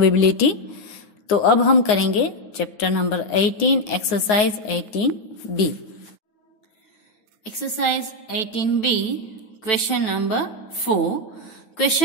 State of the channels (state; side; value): late; right; 9.5 ms